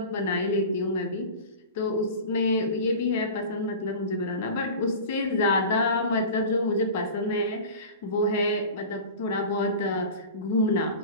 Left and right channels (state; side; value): inverted; both; correlation -0.34